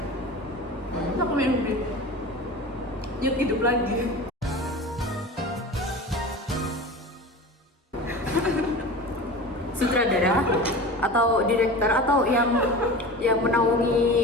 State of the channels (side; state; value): both; normal; correlation 0.33